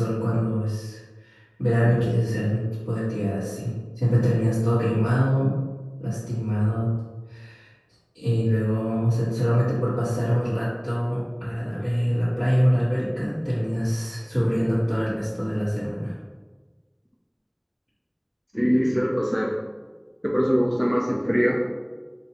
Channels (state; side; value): identical; both; correlation 1.00